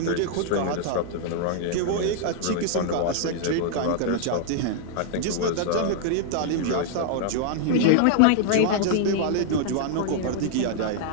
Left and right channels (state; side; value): different; both; correlation -0.01